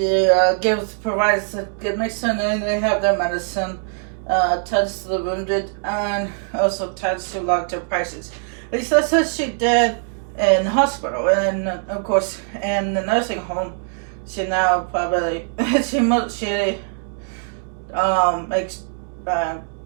provides a good medicine, and they have their medicine. Tends to the wounded, and also tends to long-term patients. At least that's what she did in the hospital, and of course in the nursing home. She now probably she makes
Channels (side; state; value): left; silent; 62 dB below the other